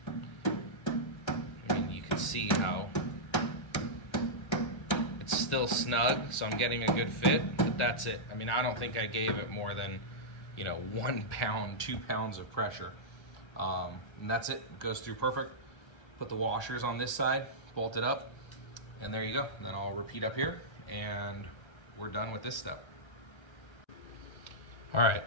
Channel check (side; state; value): right; late; 1.2 ms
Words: I mean, you can see how it's still snug, so I'm getting a good fit, but that's it. I mean, I don't think I gave it more than, 1 pound, 2 pounds of pressure. And that's it. It goes through perfect. Put the washers on this side, bolt it up, and there you go. And then I'll repeat up here, and we're done with this step. All right,